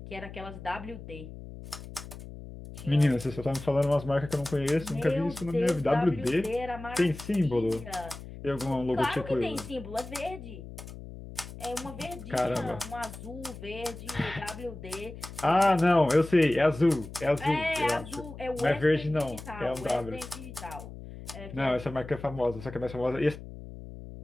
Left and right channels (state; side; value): noise; left; hum, 13 dB below the sound